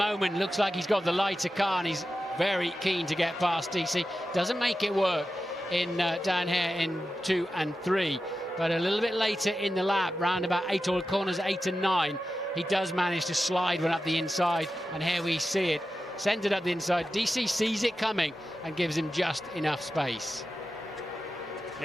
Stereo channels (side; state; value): both; normal; correlation 0.92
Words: looks like he's got the lighter car and he's very keen to get past DC. Doesn't make it work in down here in 2 and 3. But a little bit later in the lap, round about 8 or corners 8 and 9, he does manage to slide one up the inside. And here we see it. Sends it up the inside. DC sees it coming and gives him just enough space.